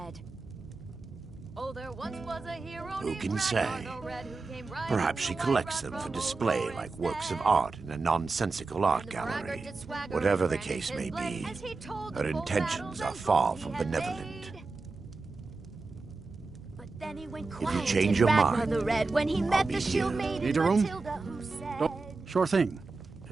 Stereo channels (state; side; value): quieter; left; 3.8 dB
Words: Oh, there once was a hero Who can say? Perhaps she collects them for display like works of art in a nonsensical art gallery. Whatever the case may be, her intentions are far from benevolent. If you change your mind, when he met the shield maiden Need a room? Matilda, who said, Sure thing.